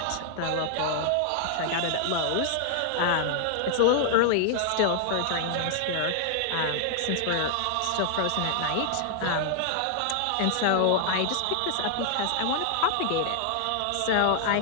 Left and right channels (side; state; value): both; different; correlation 0.00